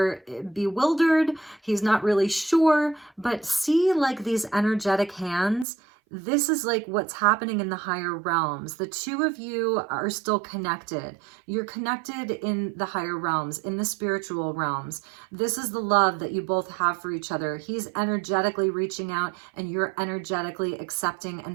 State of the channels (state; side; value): drops out; left; at 5.7 s